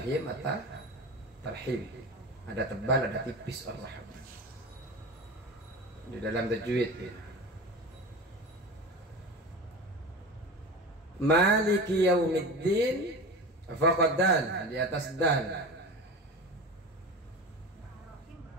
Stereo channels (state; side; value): normal; both; correlation 0.30